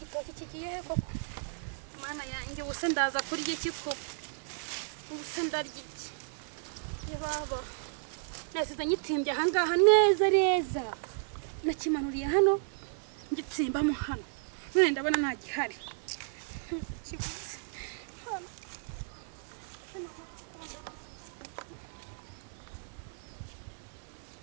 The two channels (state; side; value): silent; left; 55 dB below the other